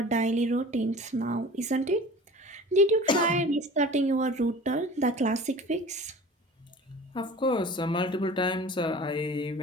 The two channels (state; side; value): normal; both; correlation 0.40